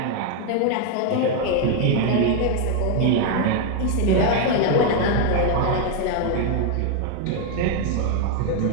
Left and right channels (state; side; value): different; both; correlation 0.01